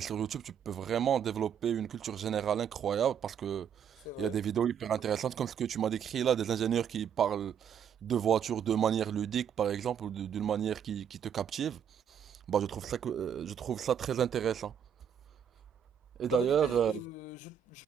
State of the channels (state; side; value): quieter; left; 8.3 dB